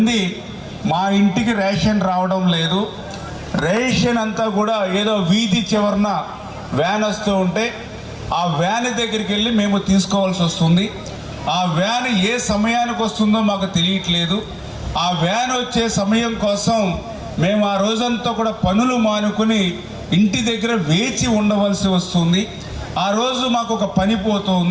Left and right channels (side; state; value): both; identical; correlation 1.00